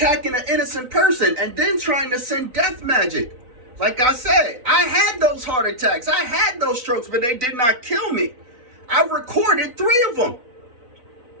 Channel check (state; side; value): late; left; 4.0 ms